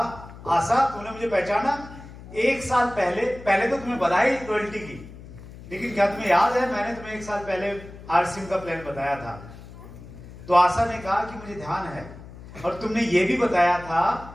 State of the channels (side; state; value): left; noise; hum, 16 dB below the sound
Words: आशा तूने मुझे पहचाना? 1 साल पहले तो तुम्हें बधाई रॉयल्टी की, लेकिन क्या तुम्हें याद है मैंने तुम्हें 1 साल पहले आरसीएम का प्लान बताया था? तो आशा ने कहा कि मुझे ध्यान है, और तुमने ये भी बताया था